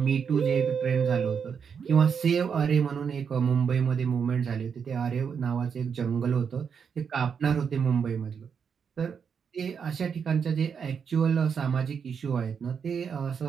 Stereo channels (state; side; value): quieter; left; 6.7 dB